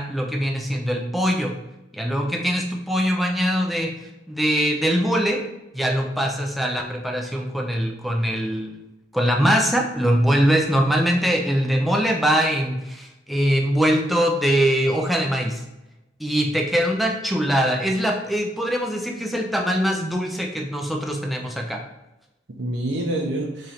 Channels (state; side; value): normal; both; correlation 0.80